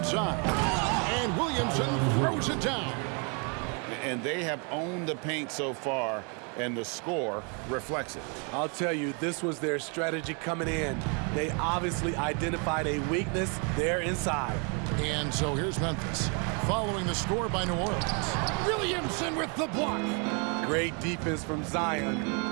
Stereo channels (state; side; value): quieter; left; 35.8 dB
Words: And Williamson throws it down. And they have owned the paint so far, and the score reflects it. I'll tell you, this was their strategy coming in. They obviously identified a weakness there inside. And so here's Memphis, following the score by New Orleans. Williamson with the block. Great defense from Zion.